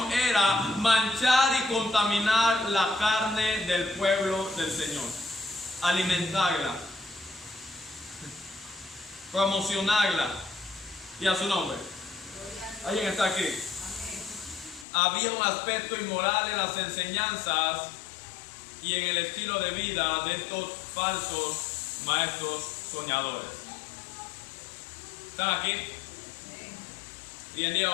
era manchar y contaminar la carne del pueblo del Señor, alimentarla, promocionarla. Y a su nombre. ¿Alguien está aquí? Había un aspecto inmoral en las enseñanzas y en el estilo de vida de estos falsos maestros soñadores. ¿Están aquí? Hoy en día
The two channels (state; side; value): drops out; right; at 14.9 s